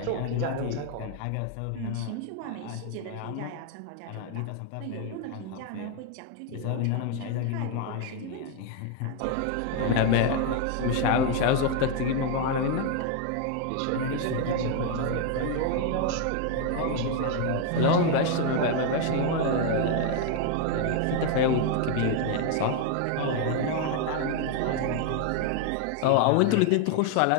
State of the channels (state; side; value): different; both; correlation 0.01